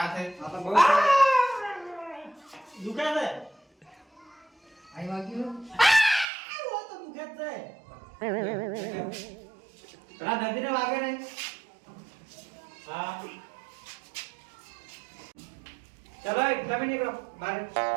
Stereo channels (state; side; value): drops out; left; at 6.2 s